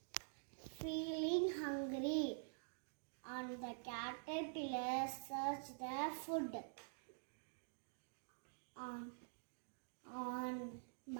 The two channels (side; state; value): left; silent; digital silence